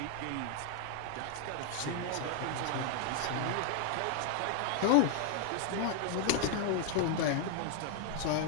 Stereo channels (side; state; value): both; different; correlation 0.00